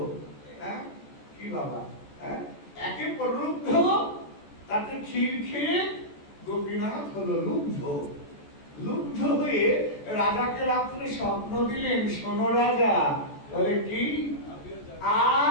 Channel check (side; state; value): right; late; 14 ms